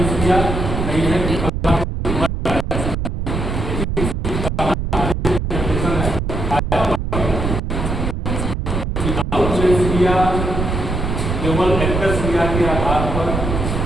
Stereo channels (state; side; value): noise; right; rumble, 2 dB below the sound